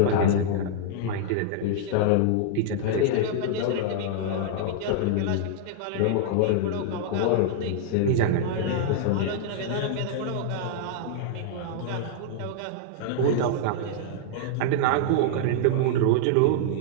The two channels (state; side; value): different; both; correlation -0.01